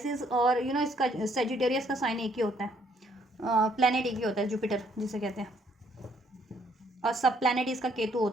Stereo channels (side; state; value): both; normal; correlation 0.67